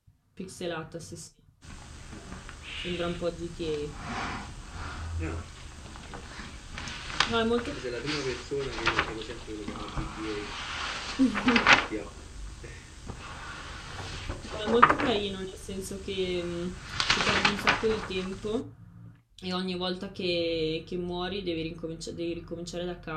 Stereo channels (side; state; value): both; identical; correlation 1.00